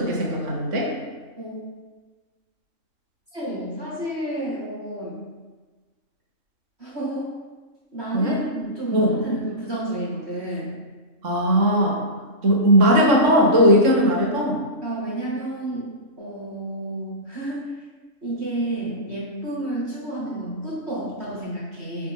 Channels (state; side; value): late; left; 3.5 ms